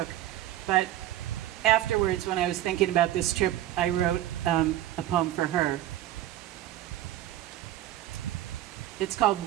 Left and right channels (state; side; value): quieter; left; 13.8 dB